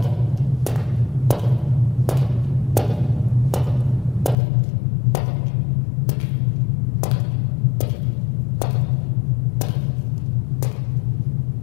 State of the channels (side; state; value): right; drops out; at 4.4 s